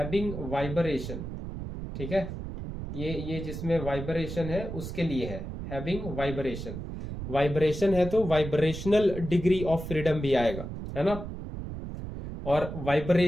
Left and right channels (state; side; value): noise; right; rumble, 7 dB below the sound